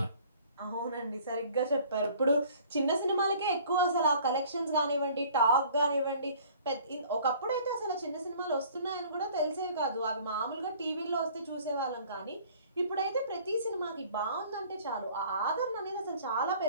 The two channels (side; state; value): both; inverted; correlation -0.52